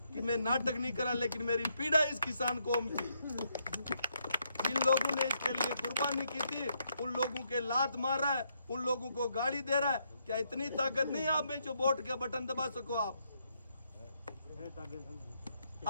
कि मैं नाटक नहीं करा, लेकिन मेरी पीड़ा इस किसान कौम की, जिन लोगों ने इसके लिए कुर्बानी की थी, उन लोगों के लात मार रहा है, उन लोगों को गाली दे रहा है। क्या इतनी ताकत नहीं आप में जो वोट के बटन दबा सको?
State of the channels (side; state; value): both; inverted; correlation -0.77